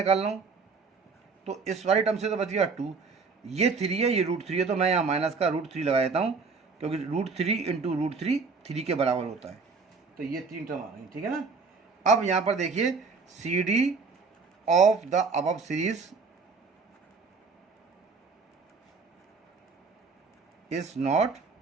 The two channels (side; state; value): left; quieter; 4.6 dB